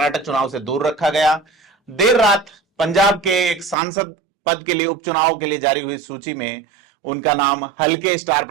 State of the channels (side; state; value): left; drops out; at 3.8 s